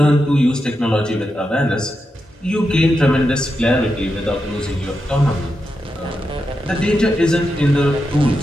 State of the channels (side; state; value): both; normal; correlation 0.87